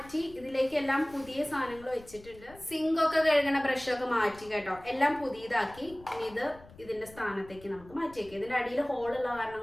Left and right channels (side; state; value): left; noise; rumble, 21 dB below the sound